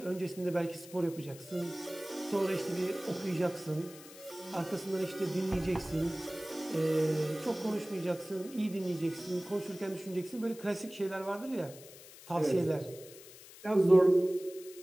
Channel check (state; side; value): noise; left; hiss, 18 dB below the sound